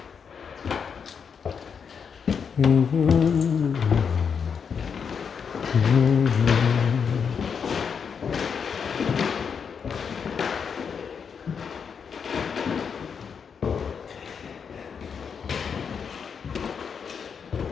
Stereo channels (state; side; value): quieter; right; 6.5 dB